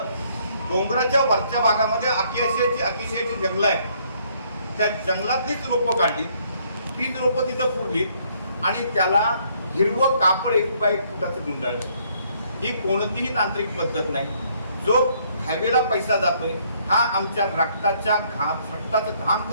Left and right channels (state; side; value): inverted; both; correlation -0.67